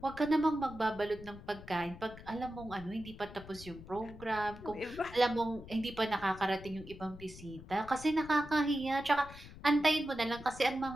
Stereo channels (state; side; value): noise; left; rumble, 16 dB below the sound